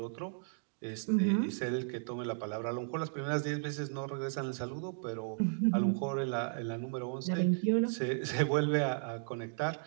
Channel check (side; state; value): left; silent; digital silence